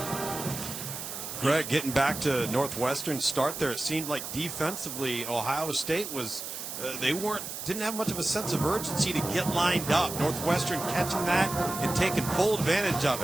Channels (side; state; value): right; noise; hiss, 7 dB below the sound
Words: Greg, getting back to Northwestern's start there, it seemed like defensively Ohio State was didn't have much of a sense of urgency to get lined up. Northwestern catching that and taking full advantage of